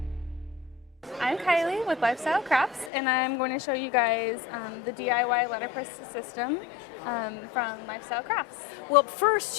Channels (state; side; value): drops out; right; at 2.9 s